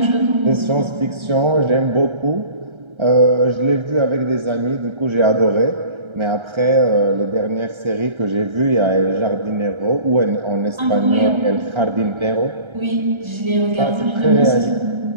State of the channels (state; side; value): late; left; 1.3 ms